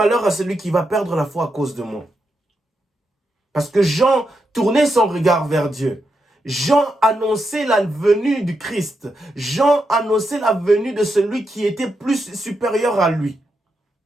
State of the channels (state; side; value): normal; both; correlation 0.84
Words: à celui qui va perdre la foi à cause de moi. Parce que Jean tournait son regard vers Dieu. Jean annonçait la venue du Christ. Jean annonçait la venue de celui qui était plus supérieur à lui.